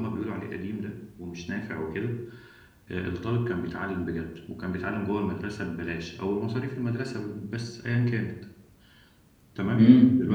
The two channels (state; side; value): identical; both; correlation 1.00